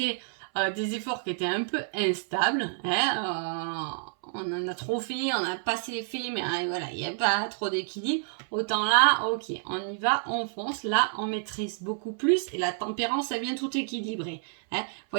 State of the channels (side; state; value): left; silent; 59 dB below the other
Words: des efforts qui étaient un peu instables. Hein, on en a trop fait, on a pas assez fait, mais voilà, il n'y a pas trop d'équilibre. Autant là, ok, on y va, on fonce. Là, on maîtrise beaucoup plus et la tempérance, ça vient tout équilibrer. Hein,